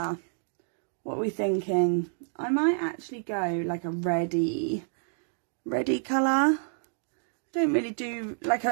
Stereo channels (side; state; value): left; silent; digital silence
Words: what are we thinking? I might actually go like a reddy colour. Don't really do like